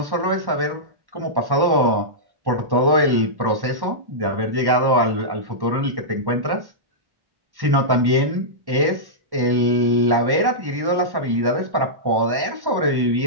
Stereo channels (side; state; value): left; late; 1.1 ms